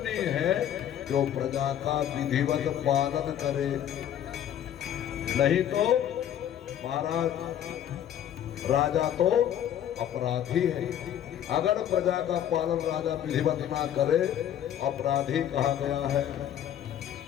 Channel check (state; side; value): quieter; right; 10.4 dB